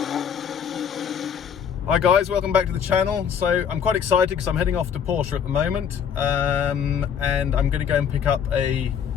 Hi guys, welcome back to the channel. So I'm quite excited because I'm heading off to Porsche at the moment, and I'm going to go and pick up a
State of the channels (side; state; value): right; quieter; 7.8 dB